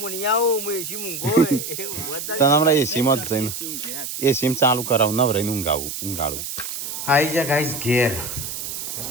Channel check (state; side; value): noise; right; hiss, 6 dB below the sound